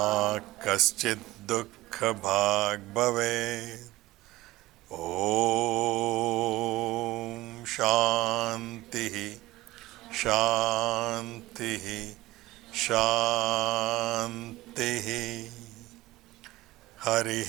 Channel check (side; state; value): left; quieter; 18.0 dB